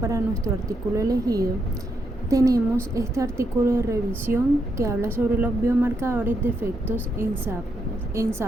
nuestro artículo elegido, tenemos este artículo de revisión que habla sobre los biomarcadores de efectos en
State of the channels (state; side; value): normal; both; correlation 0.80